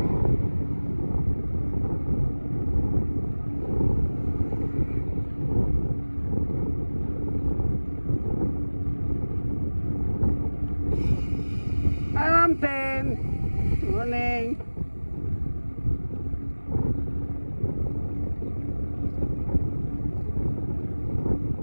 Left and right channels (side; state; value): both; inverted; correlation -1.00